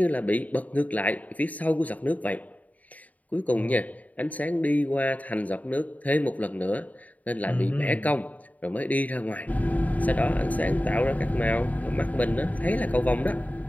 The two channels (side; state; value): right; late; 0.073 ms